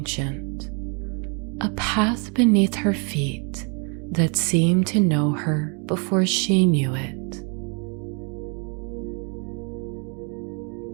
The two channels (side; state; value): left; quieter; 35.7 dB